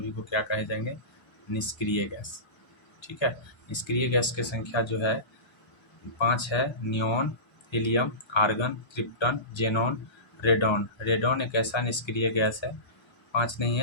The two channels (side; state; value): right; late; 1.3 ms